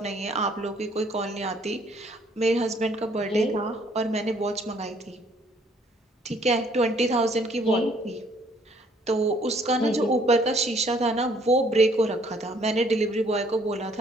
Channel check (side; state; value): both; normal; correlation 0.63